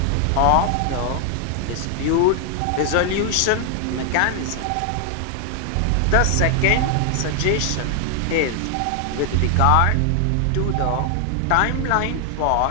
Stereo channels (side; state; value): both; different; correlation 0.00